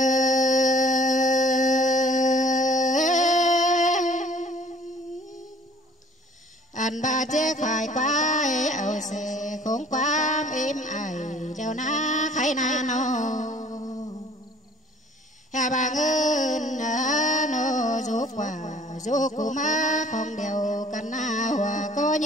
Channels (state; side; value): normal; both; correlation 0.54